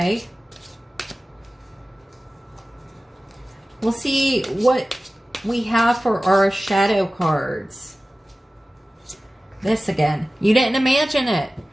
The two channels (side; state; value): both; normal; correlation 0.96